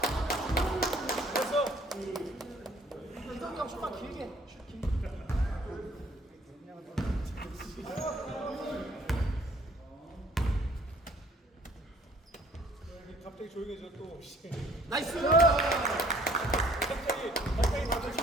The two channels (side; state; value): both; normal; correlation 0.58